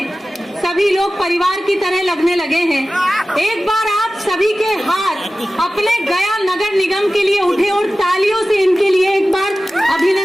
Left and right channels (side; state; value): both; normal; correlation 0.96